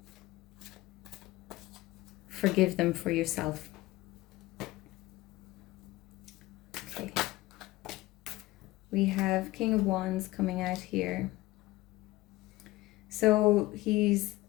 forgive them for yourself. Okay. We have King of Wands coming out here. So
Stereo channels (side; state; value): right; quieter; 18.6 dB